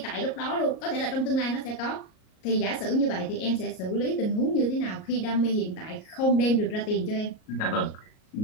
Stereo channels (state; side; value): late; right; 38 ms